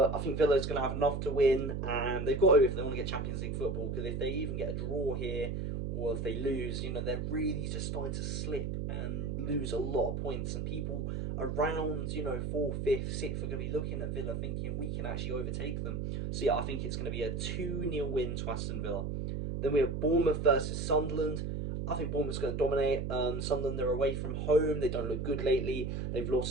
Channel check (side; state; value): right; noise; hum, 2 dB below the sound